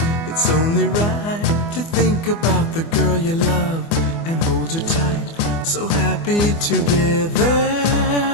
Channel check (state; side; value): late; right; 24 ms